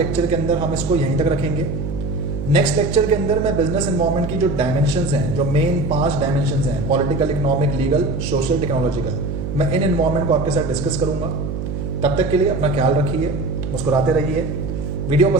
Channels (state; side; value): noise; right; hum, 4 dB below the sound